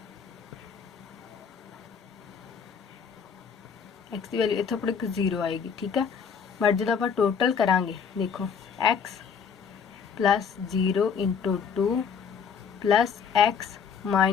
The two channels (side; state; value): right; quieter; 6.6 dB